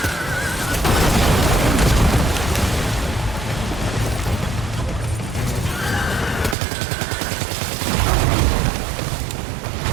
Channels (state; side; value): drops out; left; at 6.6 s